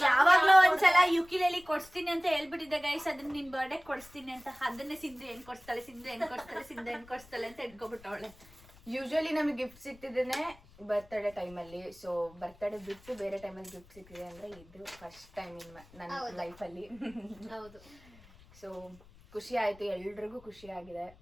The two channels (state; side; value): noise; left; rumble, 24 dB below the sound